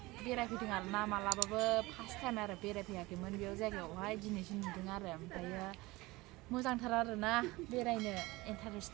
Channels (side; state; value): left; quieter; 21.1 dB